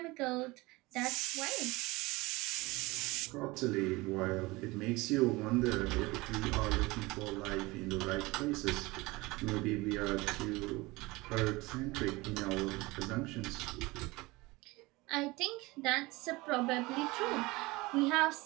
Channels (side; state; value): left; quieter; 22.2 dB